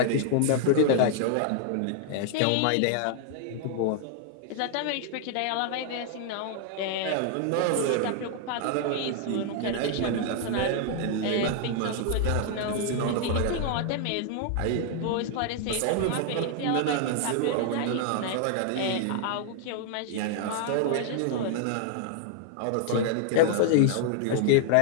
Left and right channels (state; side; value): different; both; correlation 0.00